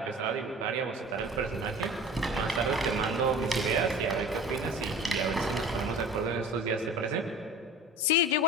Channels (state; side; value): normal; both; correlation 0.40